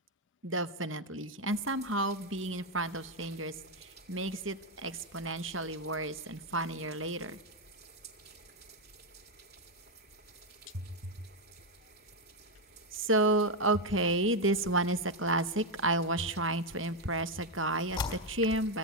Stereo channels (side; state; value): both; normal; correlation 0.05